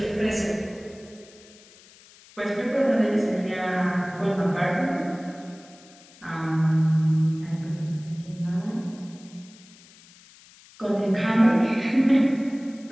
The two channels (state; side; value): noise; left; hiss, 24 dB below the sound